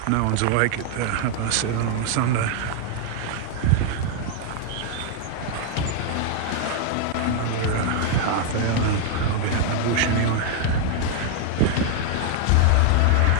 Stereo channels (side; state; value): both; different; correlation 0.00